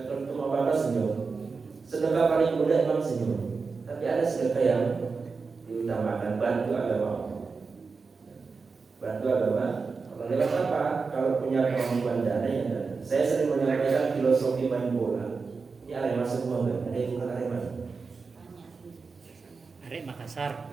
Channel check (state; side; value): quieter; left; 4.7 dB